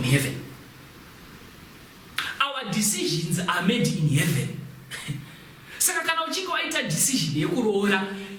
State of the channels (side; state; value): both; identical; correlation 1.00